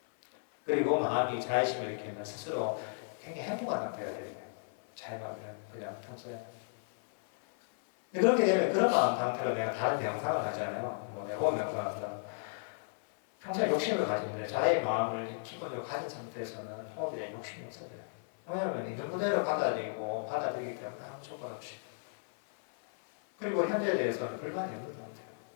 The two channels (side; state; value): right; silent; 55 dB below the other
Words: 그리고 마음이 자의심을 일으키면 스스로 굉장히 행복한 상태가 돼요. 자의 마음을 그냥 평소에. 그렇게 되면 그런 마음 상태로 내가 다른 명상을 하잖아요. 뭐 내가 호흡 명상을 한다. 평소에 욕심을 가지는데 자의 마음을 기본적으로 가진 상태에서는 호흡에 대한 욕심이 없어져요. 왜냐하면 있는 그대로 받아들이기 때문에 아무 조건 없이. 그리고 현재에 대해서는 불만이 없는 상태예요.